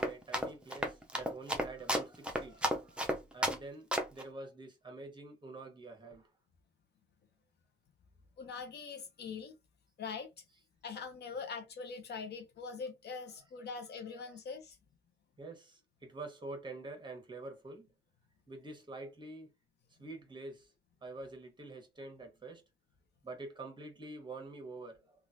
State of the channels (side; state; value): both; normal; correlation 0.46